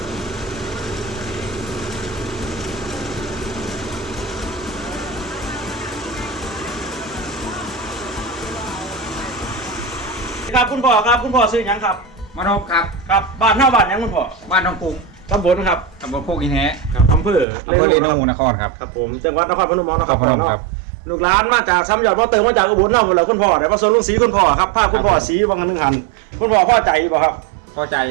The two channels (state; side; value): drops out; left; at 17.4 s